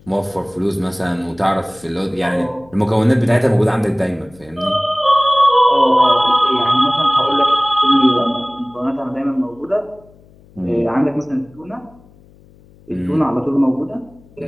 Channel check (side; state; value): left; noise; hum, 27 dB below the sound